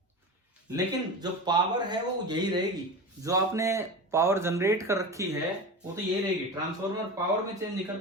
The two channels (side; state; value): both; normal; correlation 0.28